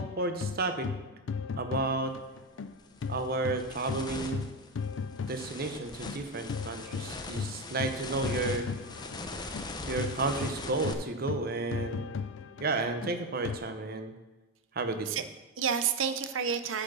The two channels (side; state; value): both; normal; correlation 0.15